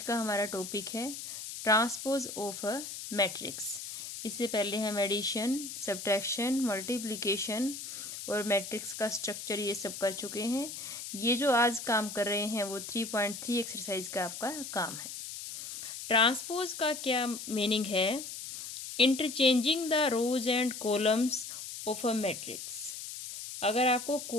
का हमारा टॉपिक है ट्रांसपोज ऑफ अ मैट्रिक्स। इससे पहले हम एडिशन, सब्ट्रैक्शन, मल्टीप्लिकेशन और मैट्रिक्स का स्ट्रक्चर ये सब कर चुके हैं। ये जो आज काम कर रहे हैं वो 3.3 एक्सरसाइज का आपका काम है। ट्रांसपोज का क्या मीनिंग है? Interchanging the rows and columns of a matrix. अगर आपको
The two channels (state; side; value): noise; left; hiss, 9 dB below the sound